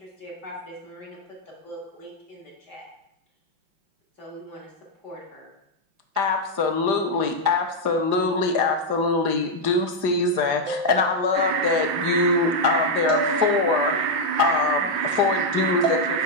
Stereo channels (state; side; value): late; left; 4.9 ms